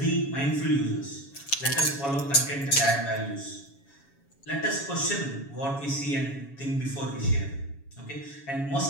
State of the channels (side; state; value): right; late; 7.2 ms